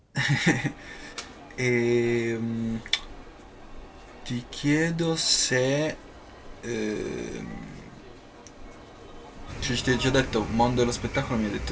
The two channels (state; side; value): identical; both; correlation 1.00